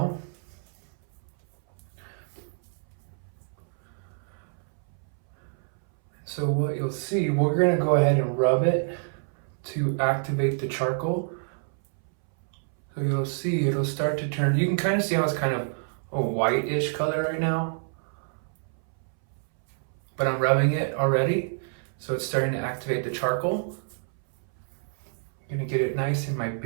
So what you'll see, we're going to go ahead and rub it to activate the charcoal. So you'll see it'll start to turn, you can kind of see how it's kind of a whitish color right now. But I'm rubbing it already, so it's starting to activate the charcoal. I'm going to get it nice in my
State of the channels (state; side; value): silent; left; 60 dB below the other